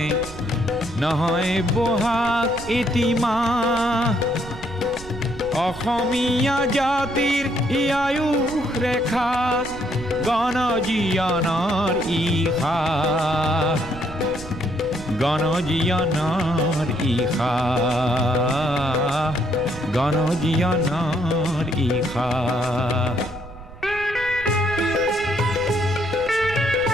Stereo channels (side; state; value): right; noise; rumble, 16 dB below the sound